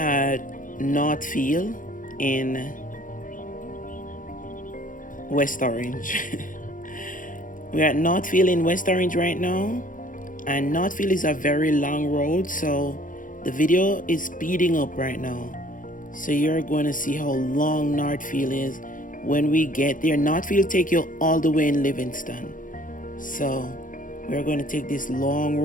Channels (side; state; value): right; late; 0.39 ms